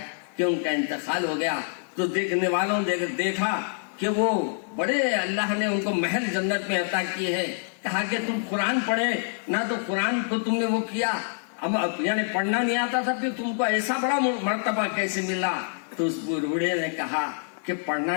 کہ ان کا انتقال ہو گیا تو دیکھنے والوں نے دیکھا کہ وہ بڑے اللہ نے ان کو محل جنت میں عطا کیے ہیں۔ کہا کہ تم قرآن پڑھے نہ، تو قرآن کو تم نے وہ کیا، یعنی پڑھنا نہیں آتا تھا، پھر تم کو ایسا بڑا مرتبہ کیسے ملا؟ تو اس بوڑھے نے کہا کہ پڑھنا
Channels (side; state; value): right; silent; 61 dB below the other